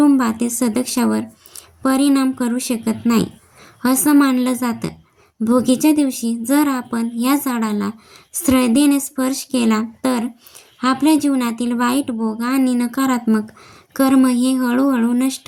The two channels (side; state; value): both; identical; correlation 1.00